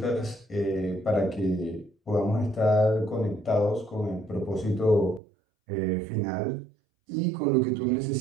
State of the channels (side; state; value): left; drops out; at 5.2 s